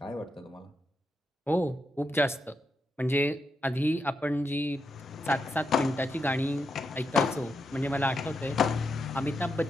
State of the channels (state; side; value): normal; both; correlation 0.84